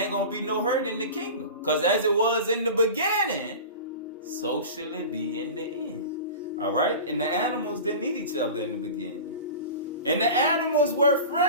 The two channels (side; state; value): both; inverted; correlation -0.33